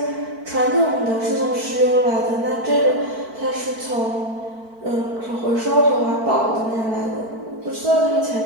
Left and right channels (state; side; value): late; left; 4.5 ms